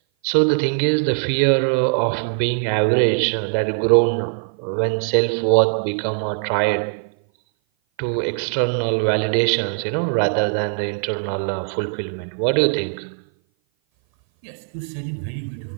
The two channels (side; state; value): left; silent; 57 dB below the other